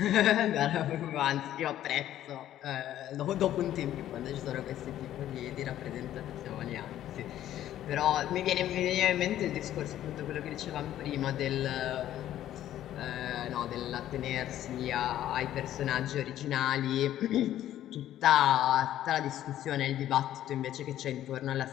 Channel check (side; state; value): right; quieter; 12.3 dB